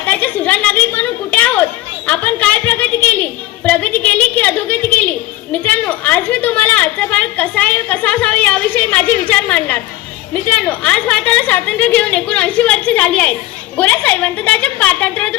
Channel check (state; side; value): quieter; right; 16.6 dB